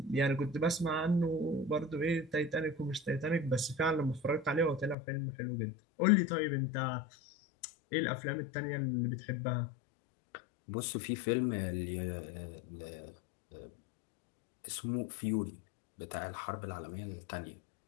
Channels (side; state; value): right; drops out; at 5.0 s